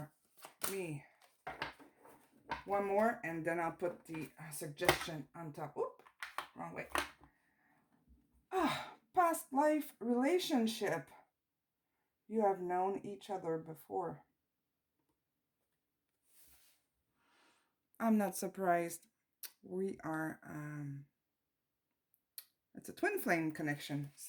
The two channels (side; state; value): both; identical; correlation 1.00